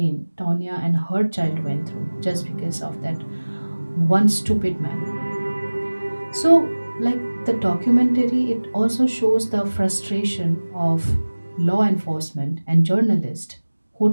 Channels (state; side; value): inverted; both; correlation -1.00